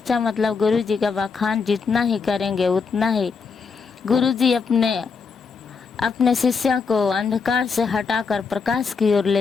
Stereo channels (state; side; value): quieter; right; 5.2 dB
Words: मतलब गुरु जी का बखान जितना ही करेंगे उतना ही गुरु जी अपने शिष्य को अंधकार से हटाकर प्रकाश की ओर